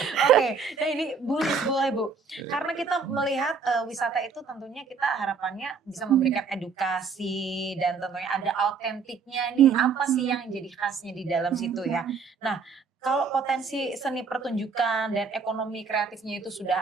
Oke, nah ini boleh Bu. Karena kita melihat wisata itu tentunya kita harapannya bisa memberikan edukasi dan tentunya ada autentiknya nih. Apa sih yang jadi khasnya di dalam situ ya. Nah, kalau potensi seni pertunjukan dan ekonomi kreatifnya itu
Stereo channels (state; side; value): quieter; left; 5.3 dB